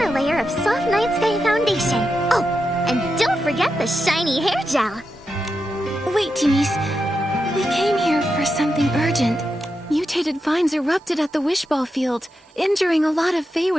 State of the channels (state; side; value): normal; both; correlation 0.87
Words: a layer of soft Night Sky foundation. Oh, and don't forget the shiny hair gel. Wait, Timmy's. We came here for something urgent. Mutated vines erupted at the Wishball field, injuring a lot of